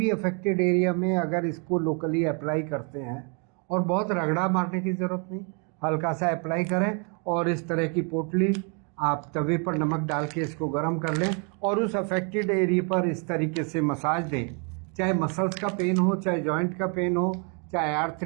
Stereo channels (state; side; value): quieter; left; 37.0 dB